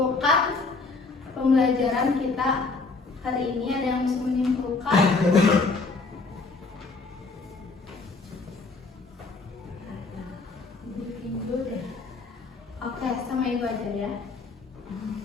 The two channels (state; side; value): quieter; right; 3.9 dB